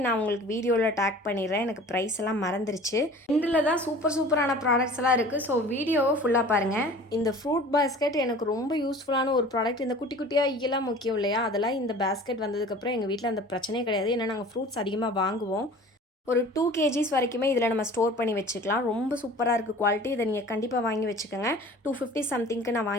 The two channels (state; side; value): normal; both; correlation 0.44